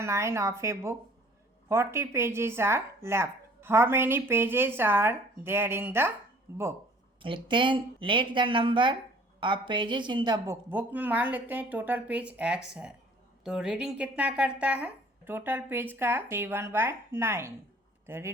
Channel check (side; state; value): both; normal; correlation 0.53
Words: of a book 40 pages are left, how many pages are there in the book. लिखते हैं let the number of pages in the book. Book में मान लेते हैं टोटल पेज x है, तो रीडिंग कितना करता है टोटल पेज का 7/9। तो